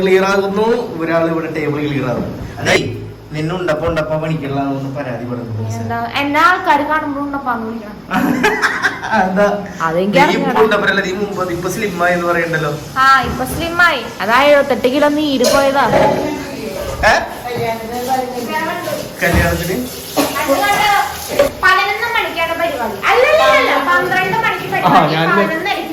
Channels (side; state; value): both; identical; correlation 1.00